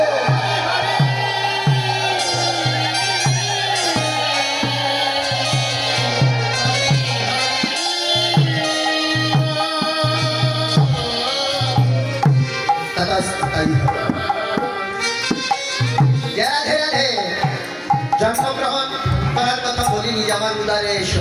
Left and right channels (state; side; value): identical; both; correlation 1.00